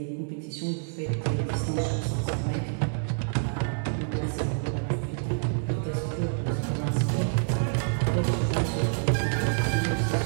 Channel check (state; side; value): silent; left; digital silence